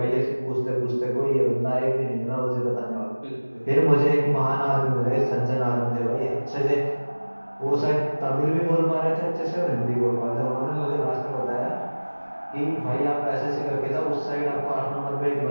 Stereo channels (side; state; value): both; inverted; correlation -1.00